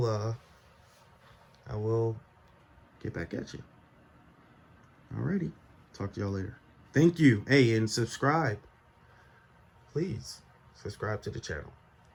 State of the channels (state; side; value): identical; both; correlation 1.00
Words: get back at you. Alrighty, talk to y'all later. Thank you. Hey, and subscribe. Please subscribe to the channel.